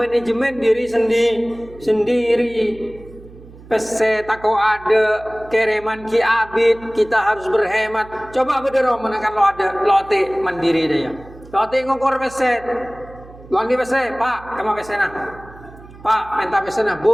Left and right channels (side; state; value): right; noise; hum, 20 dB below the sound